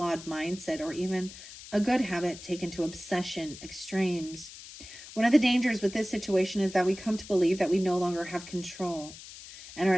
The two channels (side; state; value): left; noise; hiss, 15 dB below the sound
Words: mindset, or even a good habit taken to obsession extremes. One of the dangers with this situation is that we come to believe that we no longer have control and are